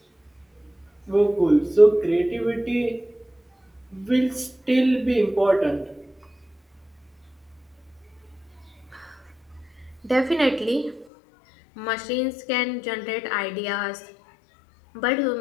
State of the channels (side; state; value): right; drops out; at 11.1 s